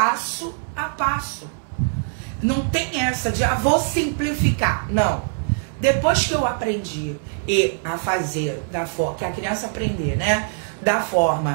a passo. Não tem essa de, vou simplificar. Não. Depois que eu aprendi a fazer da forma, que a criança aprender, né? Da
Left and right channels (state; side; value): silent; left; digital silence